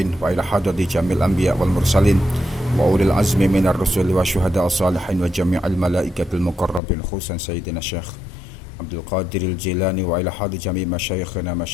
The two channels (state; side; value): drops out; right; at 6.8 s